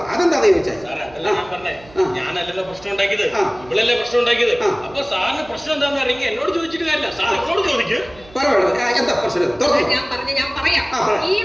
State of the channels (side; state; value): right; noise; hum, 23 dB below the sound